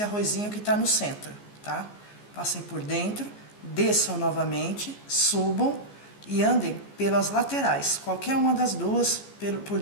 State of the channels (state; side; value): late; right; 14 ms